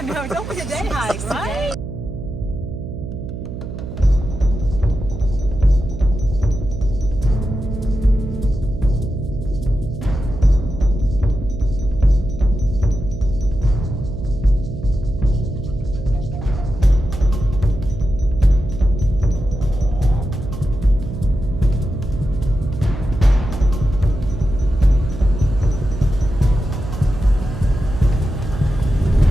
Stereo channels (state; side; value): noise; right; hum, 8 dB below the sound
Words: know, don't be a day hike, right?